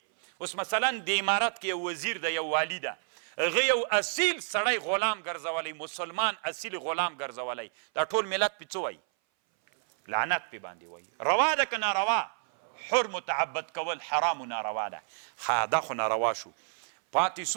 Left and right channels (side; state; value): left; silent; 57 dB below the other